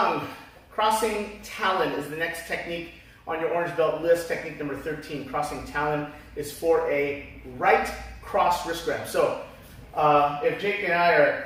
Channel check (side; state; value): both; identical; correlation 1.00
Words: Crossing Talon is the next technique on your orange belt list. Technique number 13, crossing Talon, is for a right cross wrist grab. So if Jake and I are